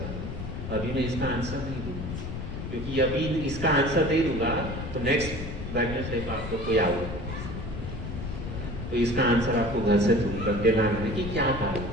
अभी मैं इसका आंसर नहीं दूंगा, क्योंकि अभी इसका आंसर नहीं दूंगा तो नेक्स्ट वेडनेसडे को आपको कोई आऊगा, तो इसका आंसर आपको घर से ढूंढ करके लाना है कि क्या कारण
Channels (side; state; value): left; noise; rumble, 7 dB below the sound